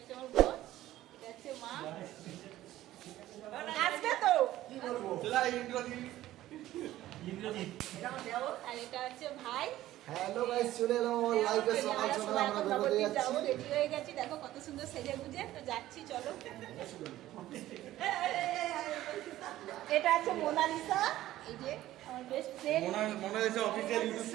আমার বোন, এটা হচ্ছে মা। আসবে তো আর এটা হচ্ছে ভাই। হ্যালো গাইস, চলে এলাম আমার লাইভে। সকাল সকাল আমরা বেরোতে যাচ্ছি। রেডি হয়ে গেছি, দেখো কত সুন্দর সেজে গুজে তো যাচ্ছি। চলো, এটা আছে মোনালিসা, এই যে আমার best friend Monalisa official YouTube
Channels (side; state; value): left; quieter; 14.6 dB